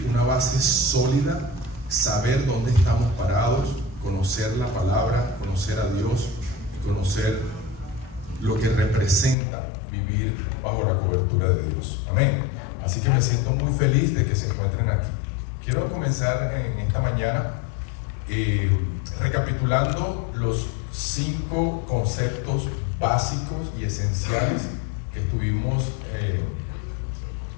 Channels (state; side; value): drops out; right; at 9.3 s